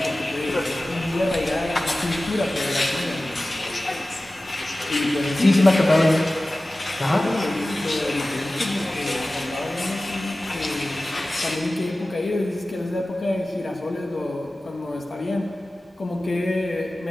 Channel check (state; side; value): normal; both; correlation 0.96